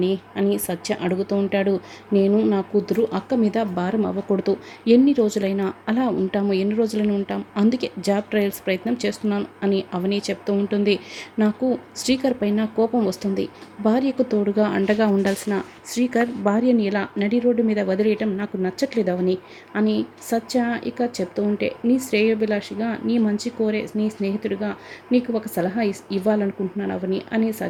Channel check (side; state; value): both; identical; correlation 1.00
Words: అని సత్య అడుగుతూ ఉంటాడు. నేను నా కూతురు అక్క మీద భారం అవ్వకూడదు. ఎన్ని రోజులైనా అలా ఉంటాము, ఎన్ని రోజులైనా ఉంటాం, అందుకే జాబ్ ట్రయల్స్ ప్రయత్నం చేస్తున్నాను అని అవని చెప్తూ ఉంటుంది. నాకు శ్రీకర్ పైన కోపం వస్తుంది. భార్యకు తోడుగా అండగా ఉండాల్సిన శ్రీకర్ భార్యని ఇలా నడి రోడ్డు మీద వదిలేయటం నాకు నచ్చట్లేదు అవని అని సత్య ఇక చెప్తూ ఉంటే, నీ శ్రేయోభిలాషిగా, నీ మంచి కోరే నీ స్నేహితుడిగా నీకు ఒక సలహా ఇవ్వాలనుకుంటున్నాను అవని అని